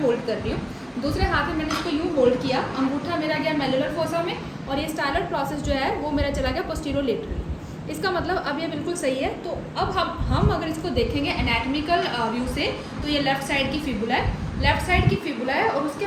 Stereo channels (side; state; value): both; identical; correlation 1.00